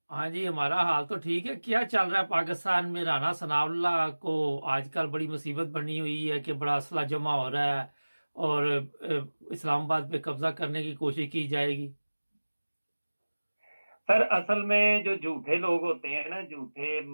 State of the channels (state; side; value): inverted; both; correlation -1.00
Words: हाँ जी, हमारा हाल तो ठीक है। क्या चल रहा है पाकिस्तान में? राना सनाउल्लाह को आजकल बड़ी मुसीबत बनी हुई है कि बड़ा असला जमा हो रहा है और इस्लामाबाद पे कब्जा करने की कोशिश की जाएगी। सर असल में जो झूठे लोग होते हैं ना, झूठे